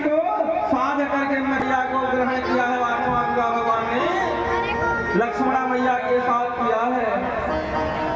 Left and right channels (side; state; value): both; identical; correlation 1.00